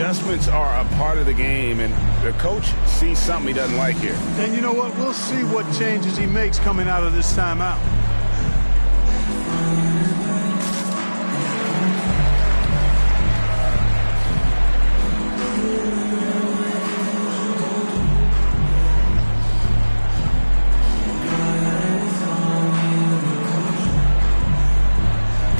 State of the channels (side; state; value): both; inverted; correlation -1.00